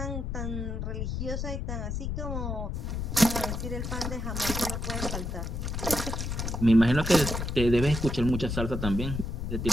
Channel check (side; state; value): left; noise; rumble, 3 dB below the sound